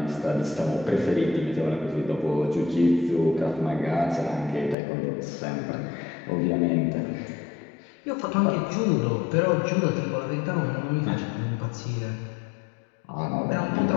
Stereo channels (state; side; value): drops out; right; at 4.8 s